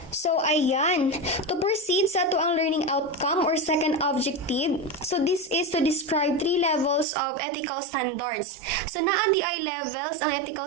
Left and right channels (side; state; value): left; drops out; at 7.1 s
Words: So ayan, to proceed sa ang learning outcome or second objective, so this is to describe 3 levels of ethical standards. So naa di ay levels ang